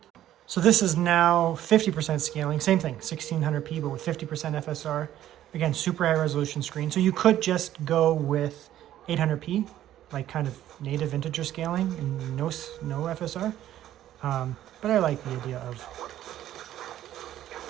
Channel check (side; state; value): left; quieter; 12.5 dB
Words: So this is now 50% scaling. Same thing, 1600p, but with 50% FSR. Again, super high resolution screen. So you could just go with 800p, like kind of native integer scaling and no FSR. But I like the idea of